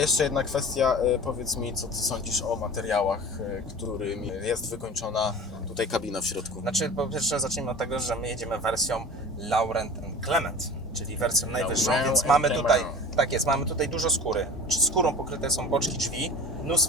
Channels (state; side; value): normal; both; correlation 0.38